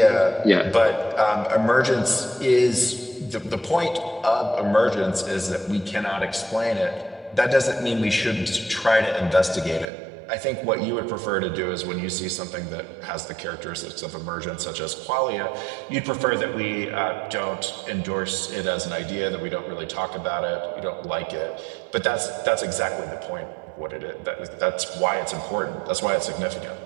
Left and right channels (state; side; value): drops out; left; at 9.9 s